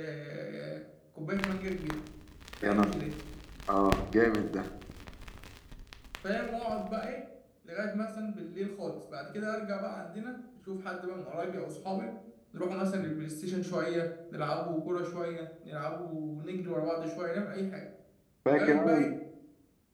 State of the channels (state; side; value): identical; both; correlation 1.00